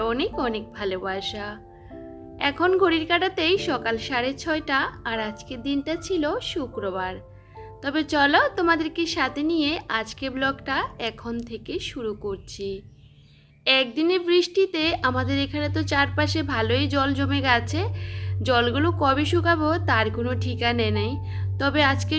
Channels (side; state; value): both; identical; correlation 1.00